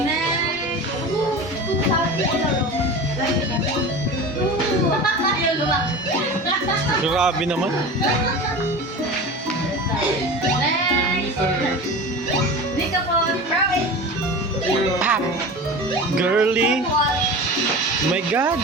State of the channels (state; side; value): normal; both; correlation 0.32